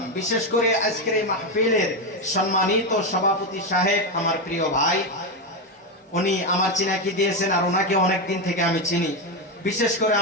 বিশেষ করে আজকের এই মাহফিলের সম্মানিত সভাপতি সাহেব, আমার প্রিয় ভাই, উনি আমার চিনাকি দিয়েছেন আর ওনাকে অনেক দিন থেকে আমি চিনি। বিশেষ করে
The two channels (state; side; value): normal; both; correlation 0.10